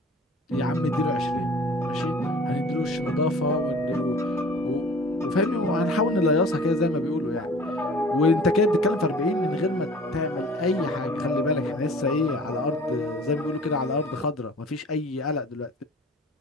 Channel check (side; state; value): both; normal; correlation 0.46